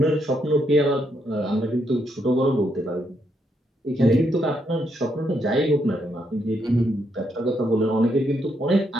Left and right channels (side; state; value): both; normal; correlation 0.77